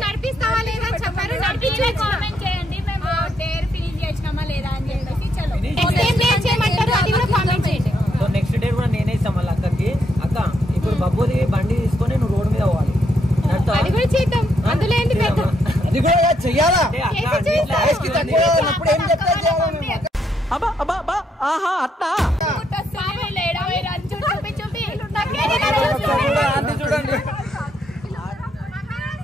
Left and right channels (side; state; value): both; normal; correlation 0.76